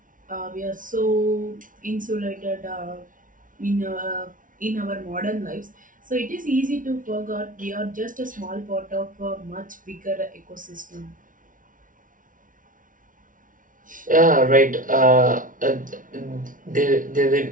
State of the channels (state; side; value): late; left; 0.38 ms